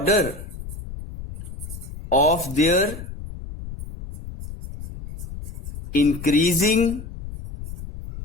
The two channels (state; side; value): noise; left; rumble, 10 dB below the sound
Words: of their increasing